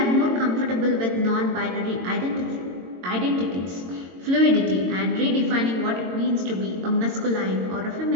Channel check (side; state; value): left; late; 22 ms